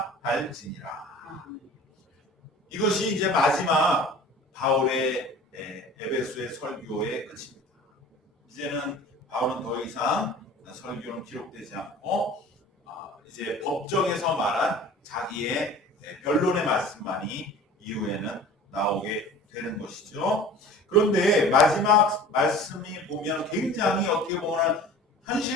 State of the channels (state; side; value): normal; both; correlation 0.42